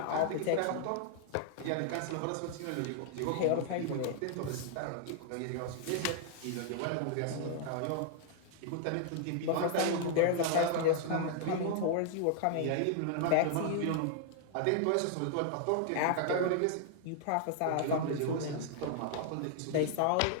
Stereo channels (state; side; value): different; both; correlation -0.01